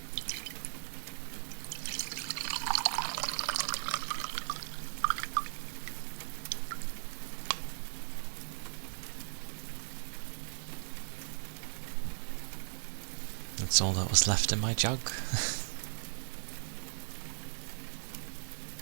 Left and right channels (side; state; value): left; silent; digital silence